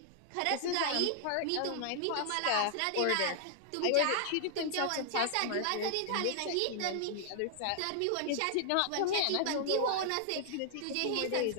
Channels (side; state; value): both; different; correlation -0.01